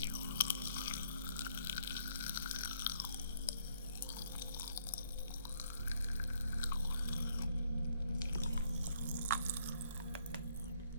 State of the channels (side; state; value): both; inverted; correlation -0.68